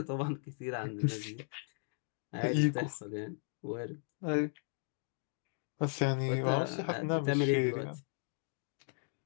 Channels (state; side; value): silent; right; 54 dB below the other